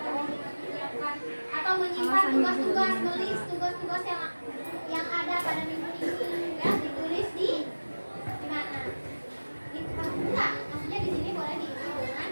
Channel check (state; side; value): inverted; both; correlation -1.00